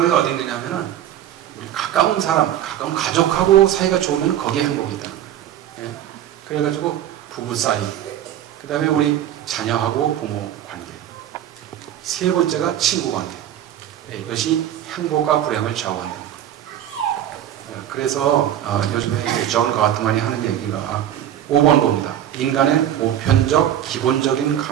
게 어디 있느냐면은, 우리 가까운 사람, 가까운 가족하고 사이가 좋으면 거기에 행복이 있다는 거예요. 예. 그래가지고 부부 사이, 그 다음에 우리 자녀하고 부모 관계, 세 번째가 친구 관계. 예, 이것이 행복과 불행을 좌우한다는 거예요. 예, 그래서 요즘에 존 가트만이 하는 얘기가 5번 겁니다. 인간의 보편적, 기본적인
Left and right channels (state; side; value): quieter; left; 11.2 dB